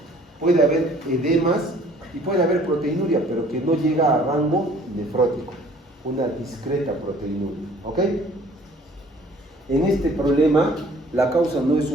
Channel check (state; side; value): normal; both; correlation 0.54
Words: puede haber edemas y puede haber proteinuria, pero que no llega a rango nefrótico, una discreta proteinuria, ¿ok? En este problema, la causa no es